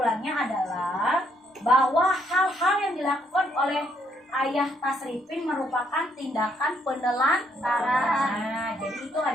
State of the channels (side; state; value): both; normal; correlation 0.72